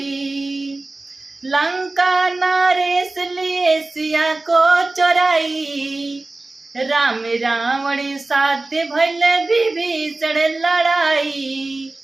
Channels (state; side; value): quieter; left; 3.1 dB